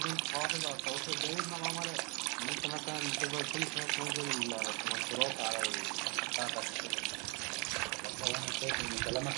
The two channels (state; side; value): quieter; left; 31.4 dB